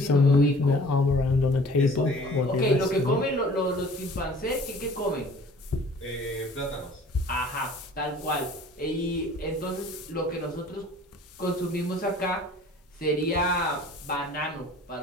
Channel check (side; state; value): both; normal; correlation 0.49